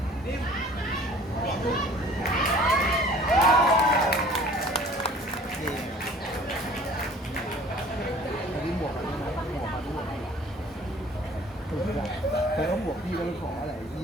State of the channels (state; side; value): normal; both; correlation 0.50